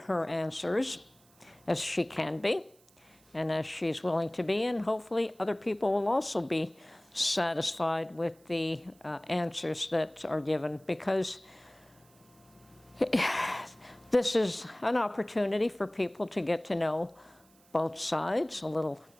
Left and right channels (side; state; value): right; noise; hiss, 30 dB below the sound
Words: answers as she can be and as she's willing to be. And hopefully other people will also be satisfied with the answers that are given, because this is an opportunity for people to get to know both sides a little